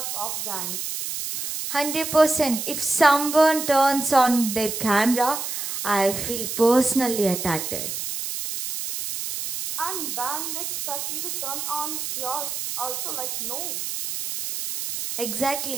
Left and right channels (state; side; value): noise; right; hiss, 4 dB below the sound